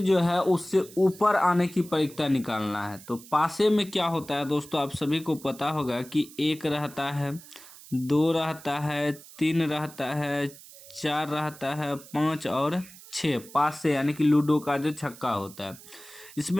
है उससे ऊपर आने की परिक्ता निकालना है। तो पासे में क्या होता है दोस्तों, आप सभी को पता होगा कि 1 रहता है, 2 रहता है, 3 रहता है, 4 रहता है, 5 और 6। पासे यानी कि लूडो का जो छक्का होता है,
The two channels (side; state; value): right; noise; hiss, 19 dB below the sound